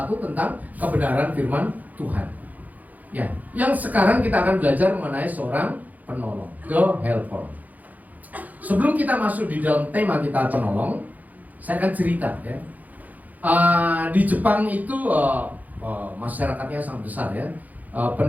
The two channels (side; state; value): left; late; 0.080 ms